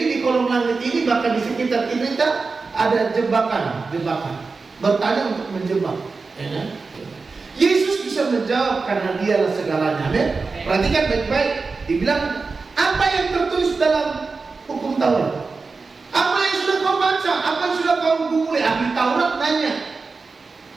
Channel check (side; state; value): left; quieter; 4.3 dB